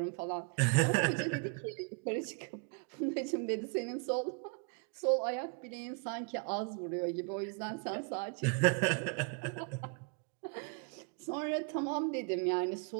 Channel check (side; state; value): left; quieter; 32.9 dB